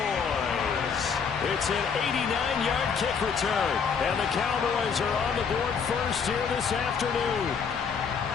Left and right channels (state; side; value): quieter; right; 6.2 dB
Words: It's an 89-yard kick return, and the Cowboys are on the board first here this afternoon.